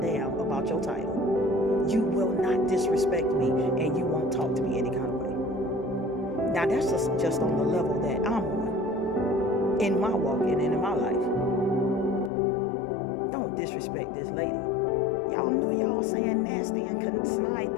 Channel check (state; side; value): drops out; right; at 12.3 s